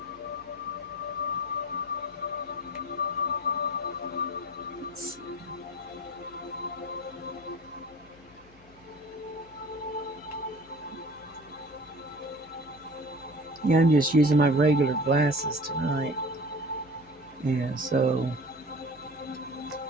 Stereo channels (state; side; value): noise; left; hum, 26 dB below the sound